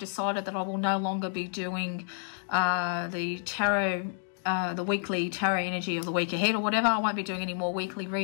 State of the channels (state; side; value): silent; right; digital silence